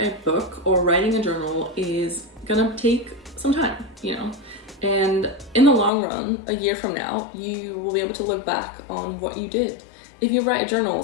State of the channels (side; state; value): right; drops out; at 5.9 s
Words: book or writing a journal is gonna take some time, you know, and in the long run, a year from now, you will be able to look back on what you did. If you write a journal,